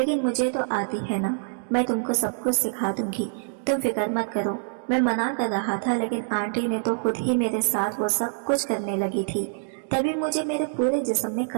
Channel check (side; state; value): left; silent; digital silence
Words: मुझे तो आती है ना, मैं तुमको सब कुछ सिखा दूंगी, तुम फिक्र मत करो। मैं मना कर रहा था, लेकिन आंटी ने तो खुद ही मेरे साथ वो सब कुछ करने लगी थी। तभी मुझे मेरे पूरे जिस्म में